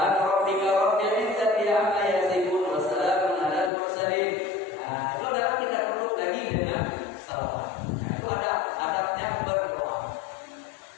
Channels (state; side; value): drops out; right; at 3.7 s